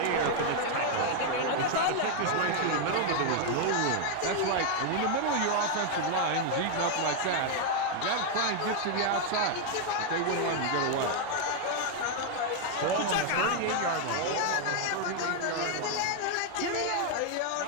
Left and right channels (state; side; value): different; both; correlation 0.00